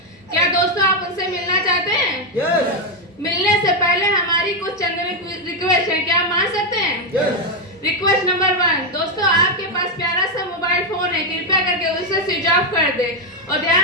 क्या दोस्तों आप उनसे मिलना चाहते हैं? yes. मिलने से पहले हमारी कुछ चंद रिक्वेस्ट है, क्या आप मान सकते हैं? yes. रिक्वेस्ट नंबर 1, दोस्तों आपके पास प्यारा सा मोबाइल फोन है, कृपया करके उसे स्विच ऑफ कर दे और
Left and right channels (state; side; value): normal; both; correlation 0.03